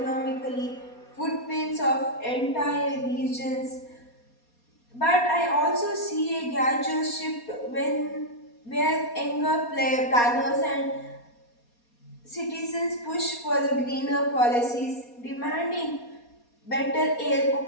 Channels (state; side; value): late; right; 4.2 ms